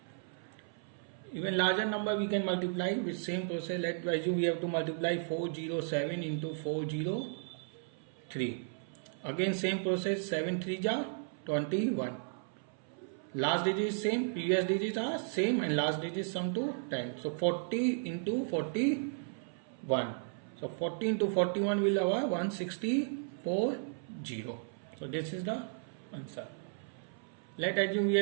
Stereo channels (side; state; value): left; silent; 55 dB below the other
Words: Even larger number we can multiply with same process. Let's assume we have to multiply 407 into 403. Again same process, 7 3 ja 21. Last digit is same, previous digits are same, and last digit sum to 10. So 40 into 41. So 40 into 41 will have 164. 0. So this is the answer. Let assume we